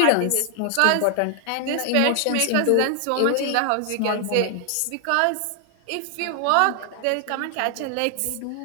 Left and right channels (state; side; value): different; both; correlation 0.00